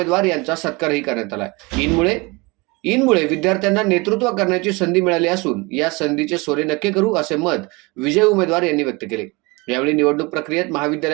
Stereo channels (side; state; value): left; quieter; 26.0 dB